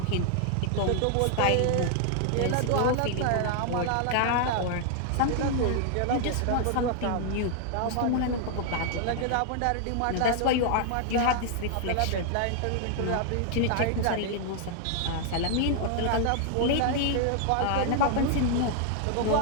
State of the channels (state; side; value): different; both; correlation 0.00